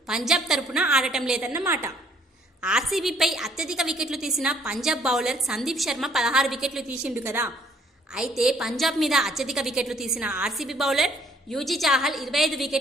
పంజాబ్ తరపున ఆడటం లేదన్నమాట. ఆర్సీబీపై అత్యధిక వికెట్లు తీసిన పంజాబ్ బౌలర్ సందీప్ శర్మ 16 వికెట్లు తీసిండు కదా. అయితే పంజాబ్ మీద అత్యధిక వికెట్లు తీసిన ఆర్సీబీ బౌలర్ యూజీ చాహల్ 25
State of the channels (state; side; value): normal; both; correlation 0.62